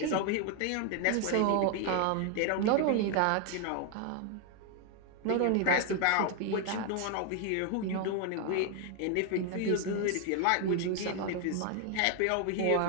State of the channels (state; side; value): different; both; correlation 0.01